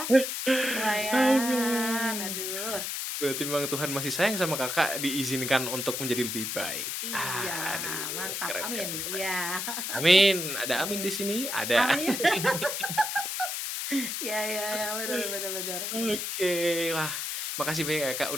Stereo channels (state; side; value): noise; left; hiss, 3 dB below the sound